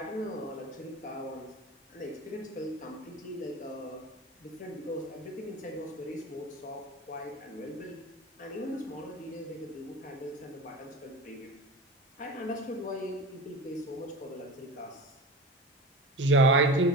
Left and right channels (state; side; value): normal; both; correlation 0.30